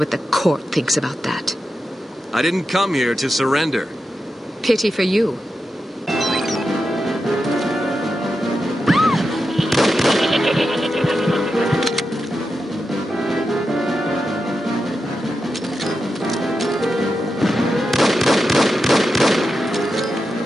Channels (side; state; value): both; normal; correlation 0.89